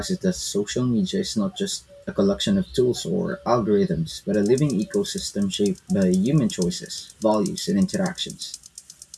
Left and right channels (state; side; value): identical; both; correlation 1.00